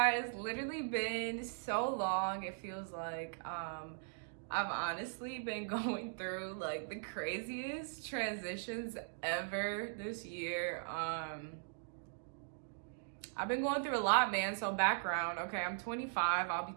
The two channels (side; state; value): left; silent; digital silence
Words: it's literally been so long. It feels like I've honestly been going through like the craziest transitions ever this year. I've been going through a lot, man. So background, okay, I'm 25, I'll be